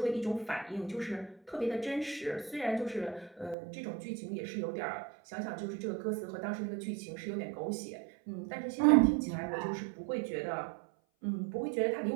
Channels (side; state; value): left; drops out; at 3.6 s